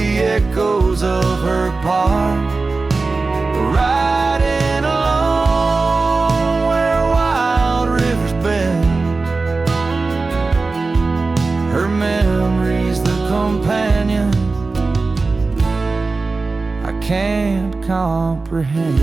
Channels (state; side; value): quieter; left; 3.8 dB